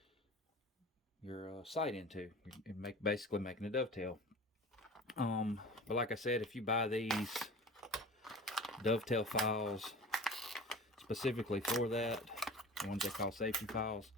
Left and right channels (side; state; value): both; normal; correlation 0.37